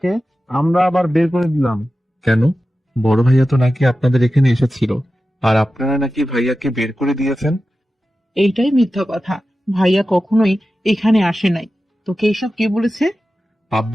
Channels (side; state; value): both; normal; correlation 0.94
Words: আমরা আবার বের করে দিলাম? কেন? বড় ভাইয়া তো নাকি আপনাদের এখানে এসেছিল, আর আপনারা নাকি ভাইয়াকে বের করে দিয়েছেন। এইটাই মিথ্যা কথা, ভাইয়া কখনোই এখানে আসে নাই। তোকে এইসব কে বলেছে?